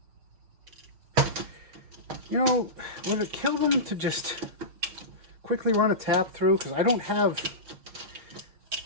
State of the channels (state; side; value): late; left; 6.4 ms